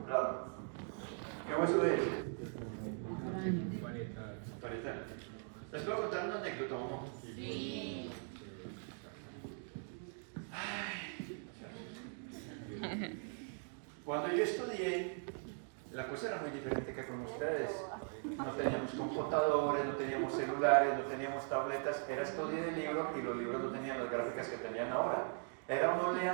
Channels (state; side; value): silent; left; 51 dB below the other